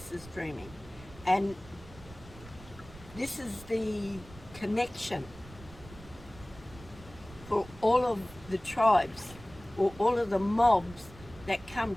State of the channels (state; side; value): noise; right; rumble, 19 dB below the sound